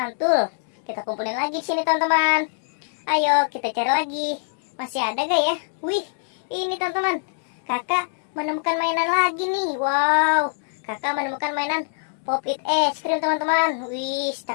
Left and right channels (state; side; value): silent; right; digital silence